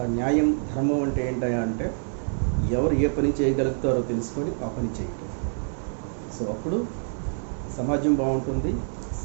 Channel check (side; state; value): left; silent; 61 dB below the other